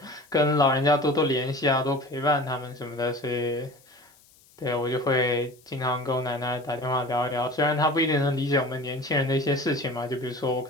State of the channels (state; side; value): noise; left; hiss, 29 dB below the sound